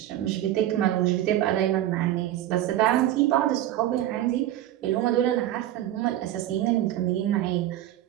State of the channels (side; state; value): left; quieter; 13.1 dB